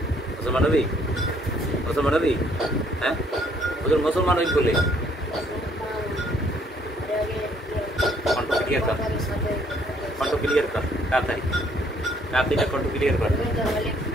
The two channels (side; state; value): both; normal; correlation 0.65